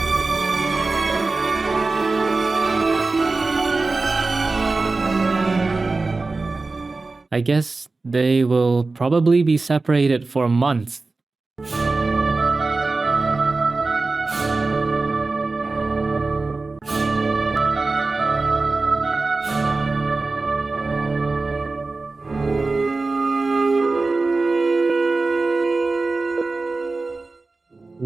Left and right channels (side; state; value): left; quieter; 3.6 dB